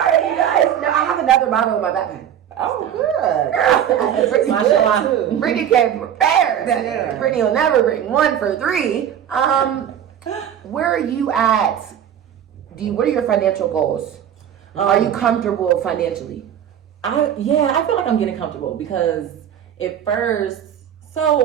you guys. No, I have another bottle in my backpack. Oh, good. Mashallah. Brittany came prepared. Brittany will never bring one for three. Where are you at? What are your financial goals? Are you comfortable financially? I feel like I'm getting comfortable because at first,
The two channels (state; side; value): quieter; left; 9.7 dB